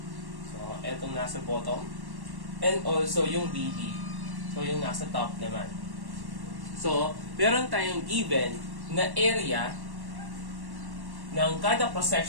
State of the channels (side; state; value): left; late; 1.1 ms